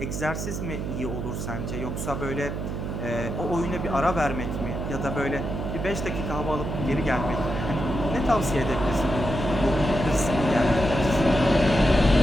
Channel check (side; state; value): right; noise; hum, 4 dB below the sound